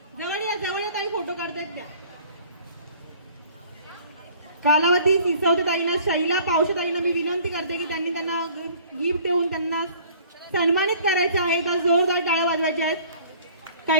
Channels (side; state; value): both; inverted; correlation -0.52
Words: जवळ या ताई, फोटो काढतायत त्या. कालावती सिसोदेताईंना, शैला पावशेताईंना मी विनंती करते की त्यांना गिफ्ट देऊन त्यांना सन्मानित करायचं आहे. तर जोरदार टाळ्या वाजवायच्या आहेत.